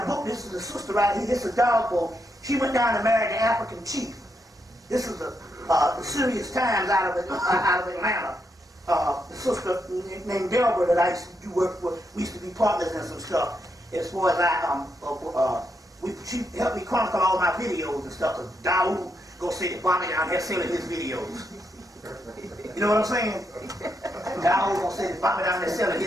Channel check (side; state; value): both; normal; correlation 0.81